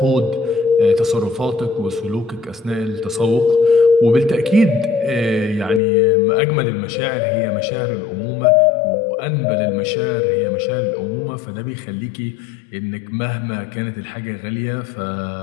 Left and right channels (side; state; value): right; drops out; at 5.8 s